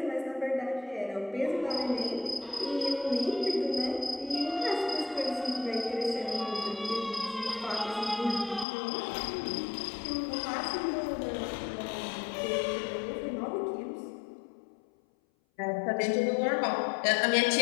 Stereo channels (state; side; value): drops out; right; at 8.7 s